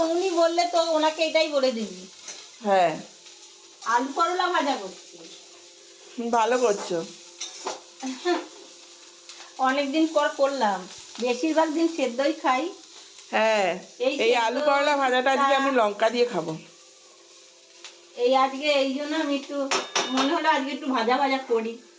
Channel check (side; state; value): both; identical; correlation 1.00